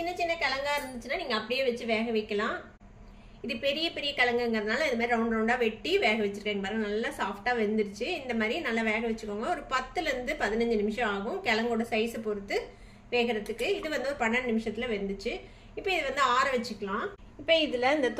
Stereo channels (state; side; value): identical; both; correlation 1.00